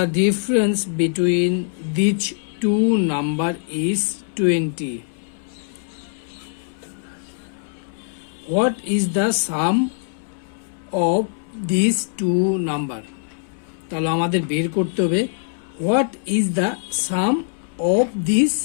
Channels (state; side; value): silent; right; 64 dB below the other